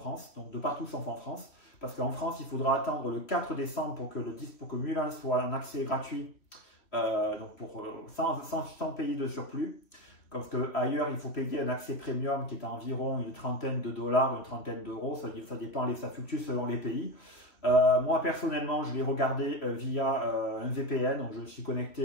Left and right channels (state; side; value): late; right; 3.1 ms